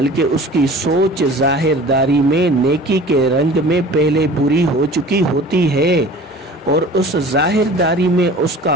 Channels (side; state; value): both; normal; correlation 0.43